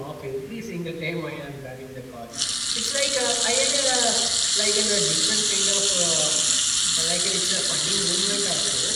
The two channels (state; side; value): identical; both; correlation 1.00